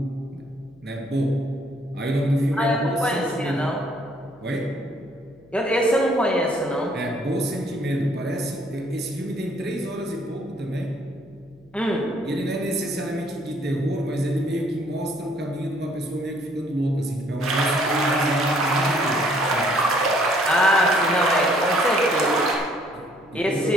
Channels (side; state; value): left; noise; hum, 28 dB below the sound